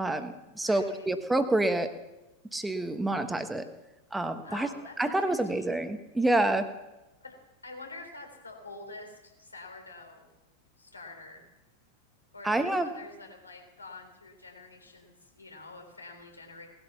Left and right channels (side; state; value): both; normal; correlation 0.82